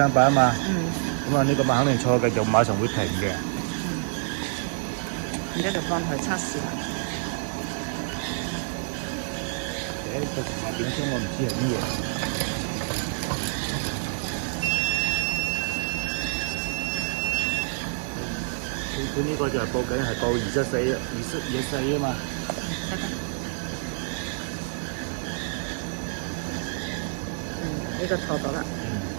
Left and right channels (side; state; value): left; silent; digital silence